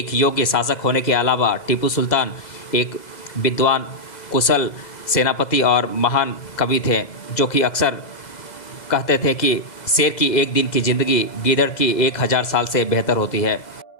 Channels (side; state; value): right; late; 2.0 ms